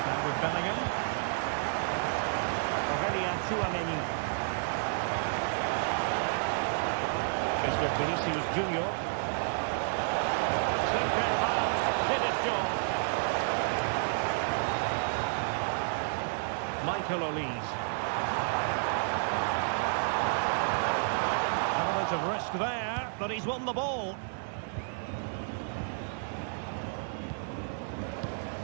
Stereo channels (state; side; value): silent; left; digital silence